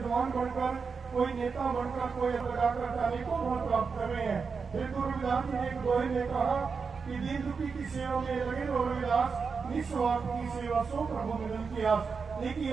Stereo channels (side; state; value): left; quieter; 5.3 dB